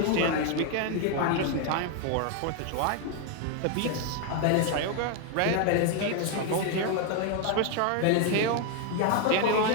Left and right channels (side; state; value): both; different; correlation 0.01